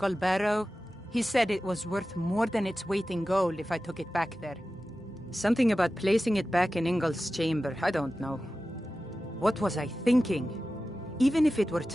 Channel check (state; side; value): normal; both; correlation 0.94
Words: Barrow. He said it was worth more than its weight in gold if I took it back there. Something about placing it back in Ingol's chamber, I don't know. What was I thinking? Even if it were